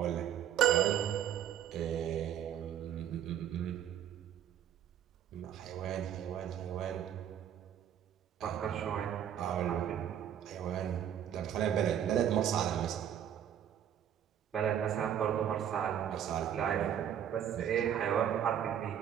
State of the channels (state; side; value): quieter; left; 9.8 dB